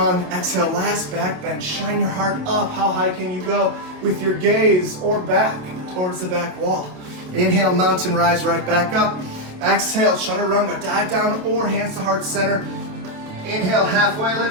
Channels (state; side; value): late; left; 28 ms